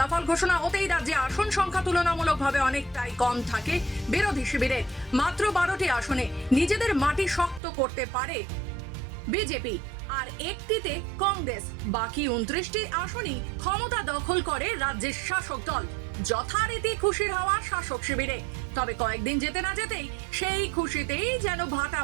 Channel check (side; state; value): left; drops out; at 7.6 s